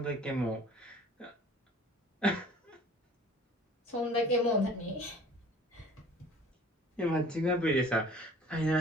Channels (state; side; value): normal; both; correlation 0.49